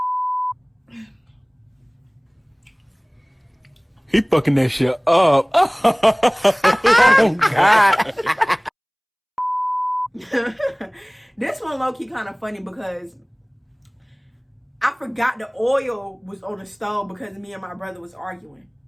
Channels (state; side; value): identical; both; correlation 1.00